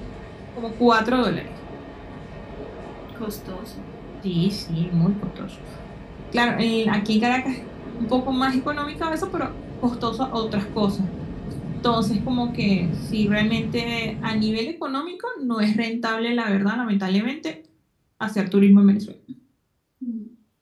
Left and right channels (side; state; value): both; identical; correlation 1.00